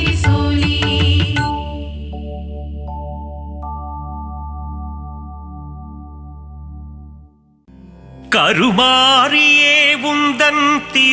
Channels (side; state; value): both; identical; correlation 1.00